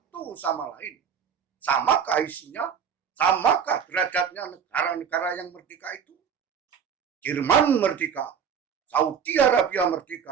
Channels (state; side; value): quieter; left; 7.3 dB